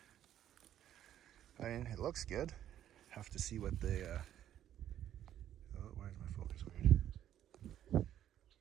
I mean, it looks good. Have to see what the, oh, why is my focus weird?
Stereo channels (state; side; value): quieter; left; 11.2 dB